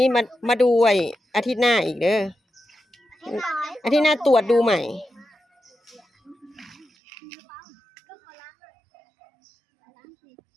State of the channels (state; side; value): drops out; left; at 6.9 s